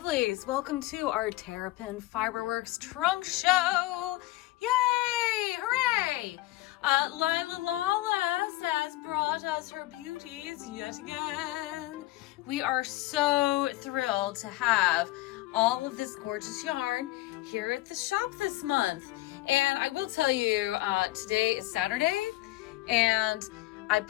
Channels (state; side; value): quieter; right; 17.8 dB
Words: Welcome to our Terrapin Fiberworks trunk show. Yay! Hooray! Lyla Lawless has brought us her beauties yet again. We are so thrilled to have all of this gorgeous yarn here at the shop this month. And I will tell you, today is Saturday, and I